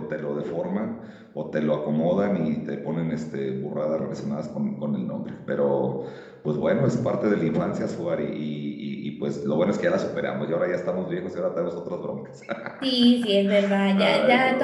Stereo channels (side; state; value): both; identical; correlation 1.00